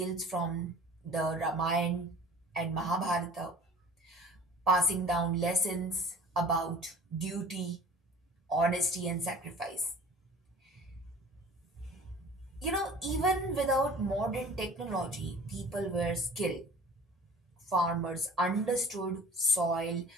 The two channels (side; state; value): both; normal; correlation 0.45